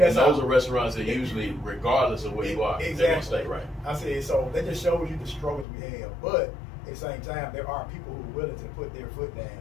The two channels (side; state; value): right; drops out; at 5.7 s